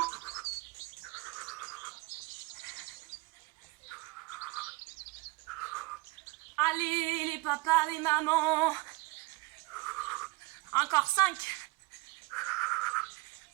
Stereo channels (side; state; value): left; quieter; 24.4 dB